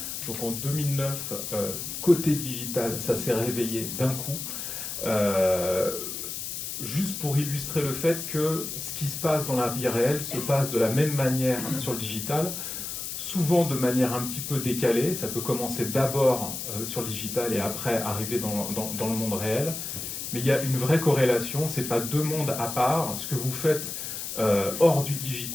Donc en 2009, côté digital, ça s'est réveillé d'un coup. Juste pour illustrer le fait que ce qui se passe dans la vie réelle se passe de la même manière sur le digital, souvent de manière un petit peu décalée. Ça peut commencer d'abord sur le digital et après arriver dans le monde réel. Mais il y a une vraie corrélation, ce n'est pas deux mondes à part. Ce que vous faites hors du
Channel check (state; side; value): noise; left; hiss, 6 dB below the sound